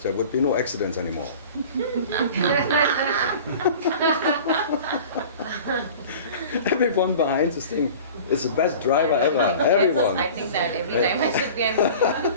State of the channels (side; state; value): both; inverted; correlation -0.41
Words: there would be no accidents anymore. Everyone behind this thing is the best driver ever. Everyone. I think that every time I sit behind